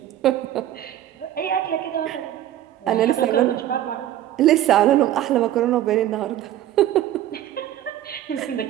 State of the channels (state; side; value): quieter; left; 12.5 dB